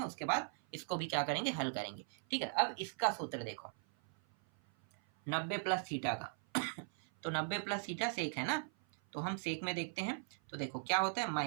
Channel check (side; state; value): left; silent; 52 dB below the other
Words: उसके बाद इसको भी क्या करेंगे, हल करेंगे। ठीक है, अब इसका सूत्र देखो 90 प्लस थीटा का तो 90 प्लस थीटा सेक है ना, तो हम सेक में देखते हैं, तो देखो क्या होता है